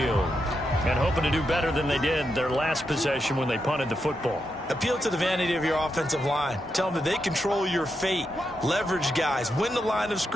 And hoping to do better than they did their last possession when they punted the football. Appeal to the vanity of your offensive line. Tell them that they control your fate. Leverage guys. Win the line of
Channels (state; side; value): normal; both; correlation 0.84